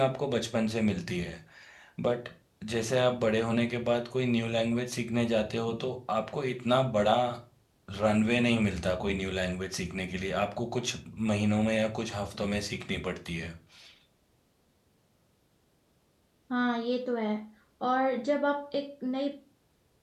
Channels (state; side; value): identical; both; correlation 1.00